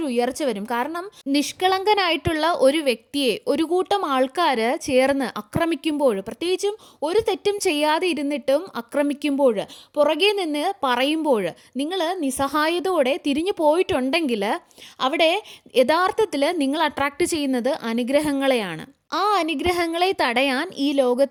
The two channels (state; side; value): identical; both; correlation 1.00